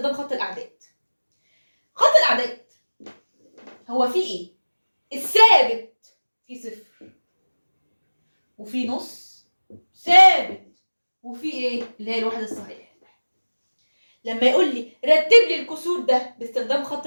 خط الاعداد. خط الاعداد هو فيه ايه؟ الثابت فيه صفر، وفي نص ثابت، وفي ايه اللي هي الوحده الصحيحه. لما يقول لي رتب لي الكسور ده باستخدام خط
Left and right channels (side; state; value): both; inverted; correlation -1.00